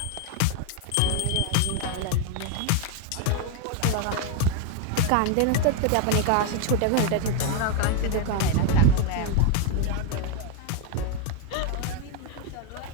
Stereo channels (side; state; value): both; different; correlation 0.01